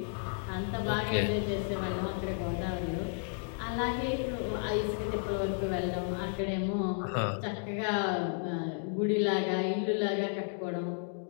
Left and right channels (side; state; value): right; silent; digital silence